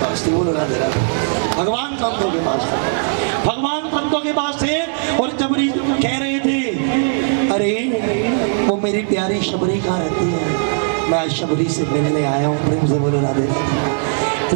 पास थी, बोलो राधे राधे। भगवान संतों के पास थे, भगवान संतों के पास थे और शबरी कह रहे थे, अरे वो मेरी प्यारी शबरी कहाँ रहती है, मैं आज शबरी से मिलने आया हूँ, प्रेम से बोलो राधे राधे।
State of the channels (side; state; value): left; silent; 67 dB below the other